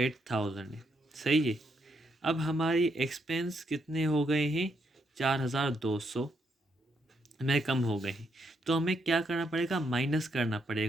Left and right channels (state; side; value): normal; both; correlation 0.77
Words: है, सही है। अब हमारी एक्सपेंस कितने हो गए हैं, 4,200 में कम हो गए हैं, तो हमें क्या करना पड़ेगा, माइनस करना